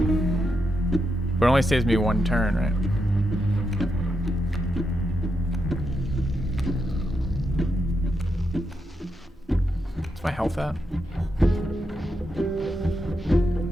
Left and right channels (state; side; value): normal; both; correlation 0.83